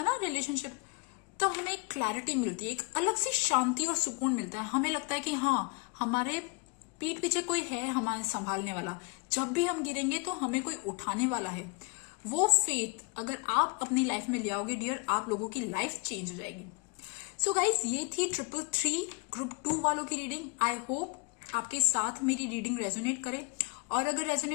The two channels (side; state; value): right; quieter; 31.6 dB